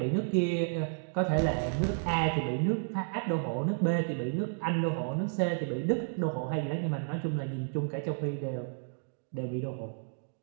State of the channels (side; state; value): left; silent; digital silence